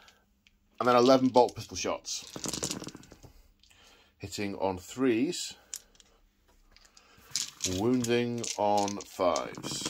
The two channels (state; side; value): identical; both; correlation 1.00